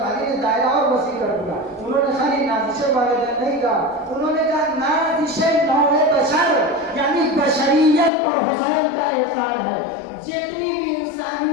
نے دائرہ اور وسیع کر دیا۔ انہوں نے خالی نازش والدین نہیں کہا، انہوں نے کہا نازش نوع بشر، یعنی بشریت پر حسین کا احسان ہے۔ جتنی بھی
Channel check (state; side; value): drops out; right; at 8.1 s